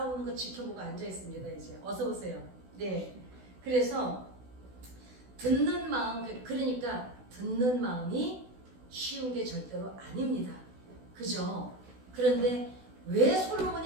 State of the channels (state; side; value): late; left; 16 ms